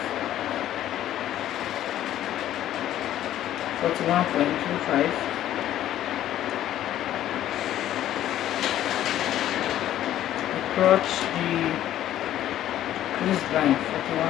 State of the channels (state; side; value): quieter; right; 12.4 dB